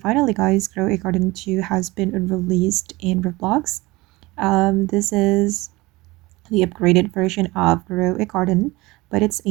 guys, Grow a Garden 2 has been released in Roblox. This is the upgraded version of Grow a Garden, but it's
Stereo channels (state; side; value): quieter; left; 21.4 dB